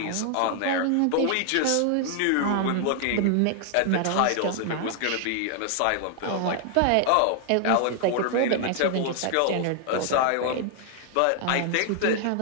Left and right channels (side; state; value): both; different; correlation 0.00